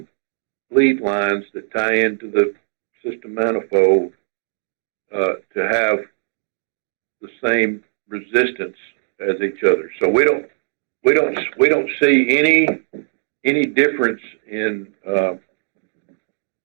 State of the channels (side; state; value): left; silent; 55 dB below the other